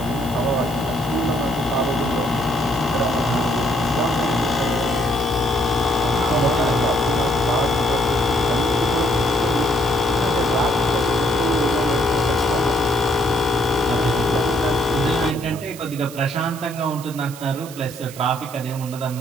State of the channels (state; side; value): noise; right; hiss, 16 dB below the sound